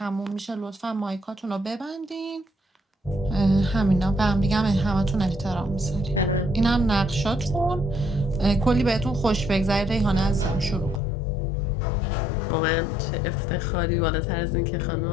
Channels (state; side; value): drops out; right; at 11.0 s